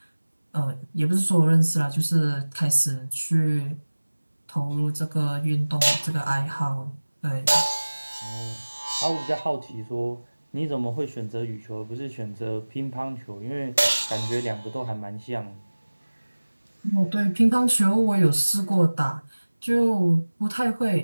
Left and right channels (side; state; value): both; inverted; correlation -1.00